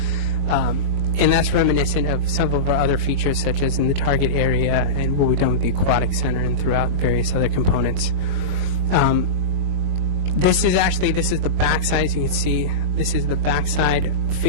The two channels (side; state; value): left; late; 21 ms